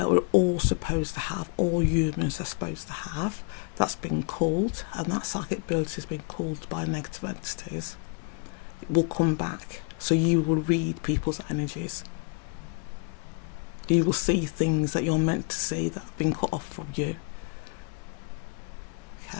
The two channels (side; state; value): right; quieter; 35.0 dB